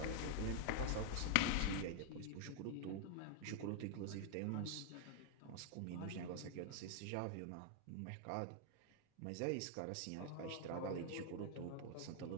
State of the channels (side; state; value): both; different; correlation 0.00